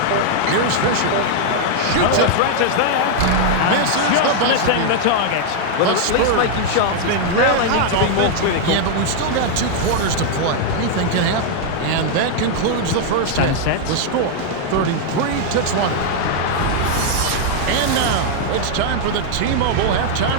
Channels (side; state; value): both; different; correlation -0.01